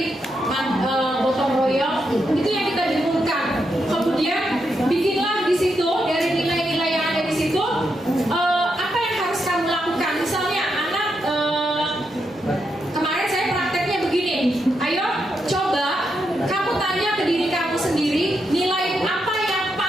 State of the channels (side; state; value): both; normal; correlation 0.83